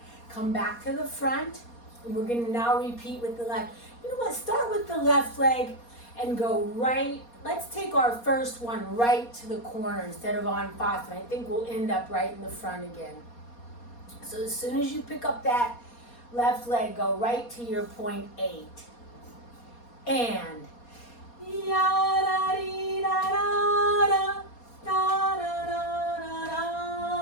Come back to the front, and we're going to now repeat with the left. You know what? Start with the left leg and go right. Let's take our first one right to the corner instead of en face, and I think we'll end up right in the front again. So as soon as you pick up that left leg, go right to your point 8. And ya da dee da da da da da da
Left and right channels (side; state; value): right; late; 4.2 ms